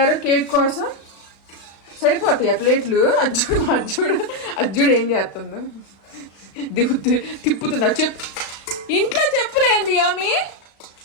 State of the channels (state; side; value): late; right; 36 ms